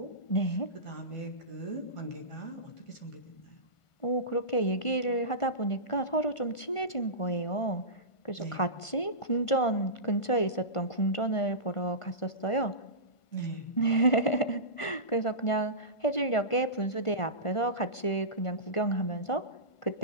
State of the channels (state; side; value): late; right; 1.5 ms